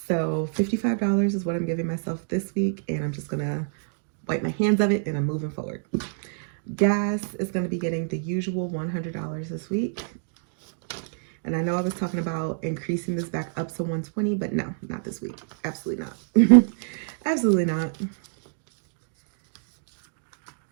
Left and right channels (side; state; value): left; silent; digital silence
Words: $55 is what I'm giving myself this week, and I'm just going to wipe my hands of it, and I'm moving forward. Gas is going to be getting the usual $100 this week. And I know I was talking about increasing this back up to 120, but no, not this week. Absolutely not. Absolutely not.